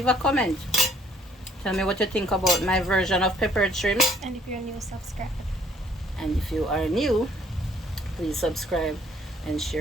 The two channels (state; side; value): normal; both; correlation 0.62